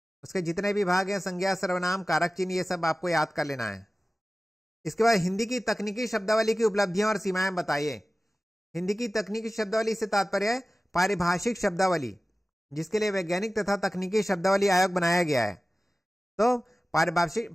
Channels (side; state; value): both; normal; correlation 0.96